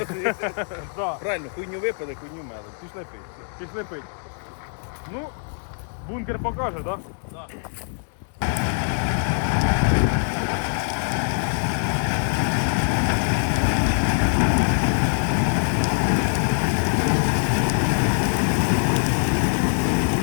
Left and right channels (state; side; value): silent; right; 57 dB below the other